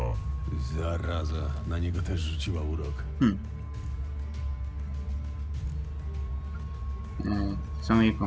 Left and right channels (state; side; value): identical; both; correlation 1.00